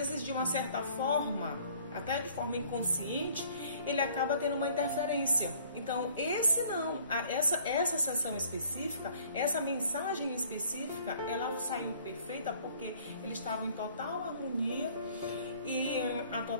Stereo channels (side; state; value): both; inverted; correlation -0.56